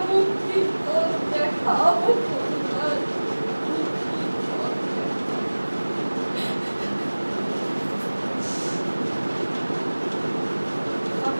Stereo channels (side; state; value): both; inverted; correlation -1.00